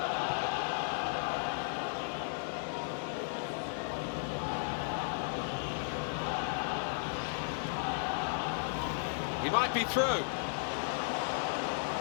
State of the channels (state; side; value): silent; right; digital silence